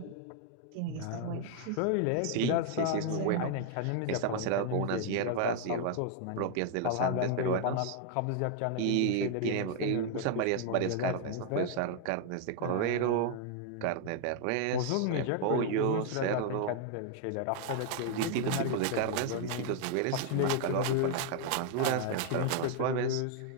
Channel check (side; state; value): both; different; correlation 0.00